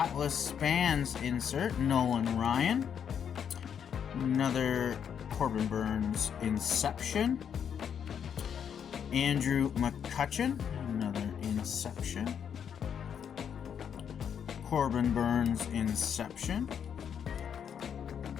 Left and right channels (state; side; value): quieter; right; 8.0 dB